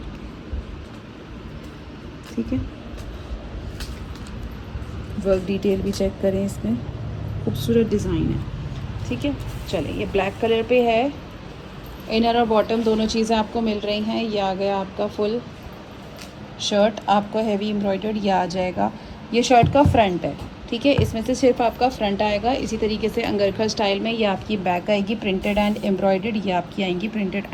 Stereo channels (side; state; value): both; identical; correlation 1.00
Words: ठीक है। वर्क डिटेल भी चेक करें, इसमें खूबसूरत डिज़ाइन है, ठीक है। चलें, ये ब्लैक कलर पे है। इनर और बॉटम दोनों चीज़ें आपको मिल रही हैं। ये आ गया आपका फुल शर्ट, आपको हैवी एम्ब्रॉयडर्ड ये आ जाएगा। ये शर्ट का फ्रंट है, ठीक है। इसमें से सिर्फ आपका फ्रंट आएगा। इसी तरीके से अंगरखा स्टाइल में ये आपकी बैक आएगी प्रिंटेड एंड एम्ब्रॉयडर्ड। ये आपकी आएंगी printed